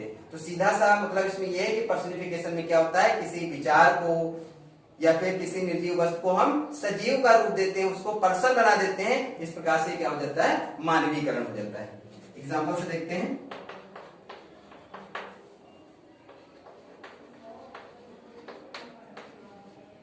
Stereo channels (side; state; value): both; identical; correlation 1.00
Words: हैं। तो सीधा सा मतलब इसमें यह है कि पर्सनिफिकेशन में क्या होता है? किसी विचार को या फिर किसी निर्जीव वस्तु को हम सजीव का रूप देते हैं, उसको पर्सन बना देते हैं। इस प्रकार से क्या हो जाता है? मानवीकरण हो जाता है। एग्जाम्पल से देखते हैं,